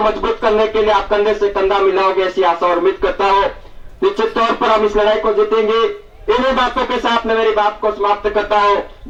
मजबूत करने के लिए आप कंधे से कंधा मिलाओगे, ऐसी आशा और उम्मीद करता हूं। निश्चित तौर पर हम इस लड़ाई को जीतेंगे। इन्हीं बातों के साथ मैं मेरी बात को समाप्त करता हूं।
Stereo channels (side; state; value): both; identical; correlation 1.00